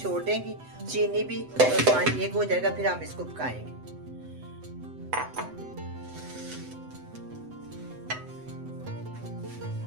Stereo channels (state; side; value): late; left; 7.9 ms